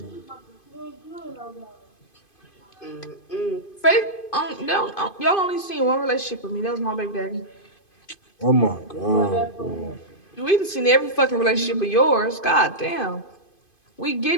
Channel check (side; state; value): right; late; 2.5 ms